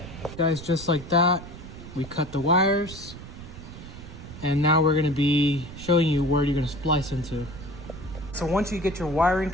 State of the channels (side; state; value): right; noise; rumble, 13 dB below the sound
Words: Guys, just like that, we cut the wires. And now we're gonna be showing you where you're gonna splice into. So once you get your wiring